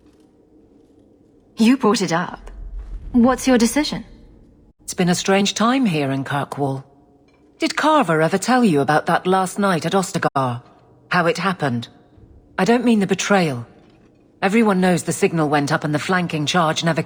You brought it up. What's your decision? It's been a strange time here in Kirkwall. Did Carver ever tell you about that last night at Ostagar? How it happened? I don't mean the betrayal. Everyone knows the signal went up and the flanking charge never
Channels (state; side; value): identical; both; correlation 1.00